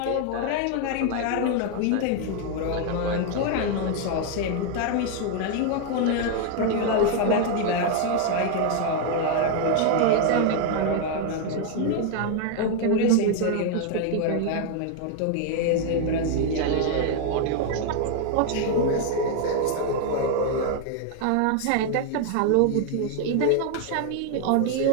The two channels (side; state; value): both; different; correlation 0.00